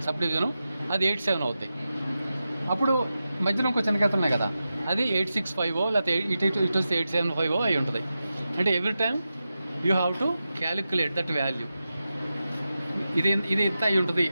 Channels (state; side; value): inverted; both; correlation -0.91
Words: సబ్ డివిజను, అది 87 అవుతాయి. అప్పుడు మధ్యలో ఇంకో చిన్న గీత ఉన్నాయి కదా, అది 865 లేకపోతే ఇటు వస్తే 875 అయి ఉంటుంది. అంటే every time you have to calculate that value. ఇది ఎంత అయి ఉంటుంది